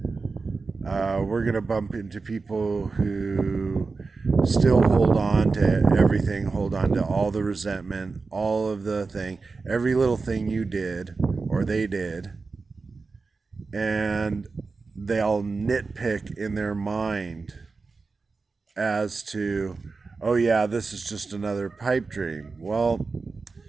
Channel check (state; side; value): quieter; left; 4.2 dB